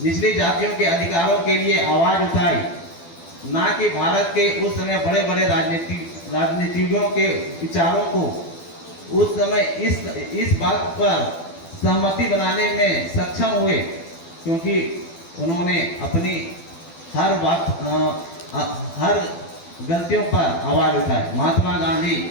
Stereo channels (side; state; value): right; late; 12 ms